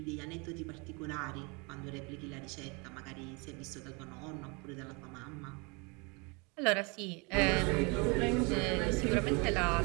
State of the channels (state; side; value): quieter; left; 30.2 dB